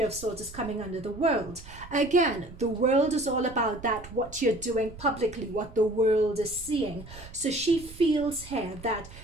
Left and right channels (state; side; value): noise; right; rumble, 17 dB below the sound